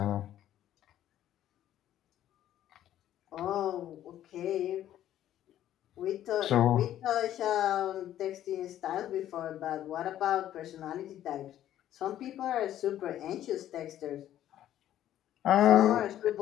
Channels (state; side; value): quieter; right; 12.0 dB